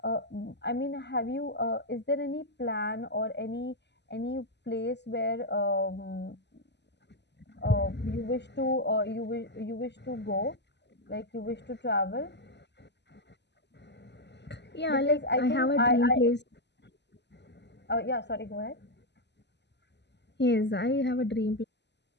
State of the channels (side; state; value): right; late; 0.50 ms